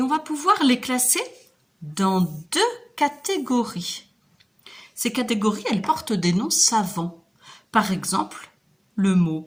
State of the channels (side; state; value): both; identical; correlation 1.00